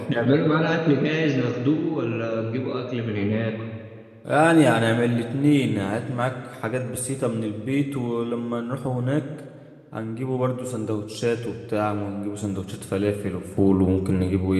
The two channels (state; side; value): identical; both; correlation 1.00